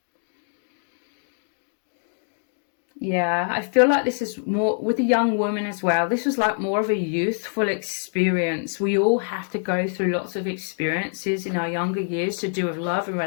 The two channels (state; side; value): silent; right; 62 dB below the other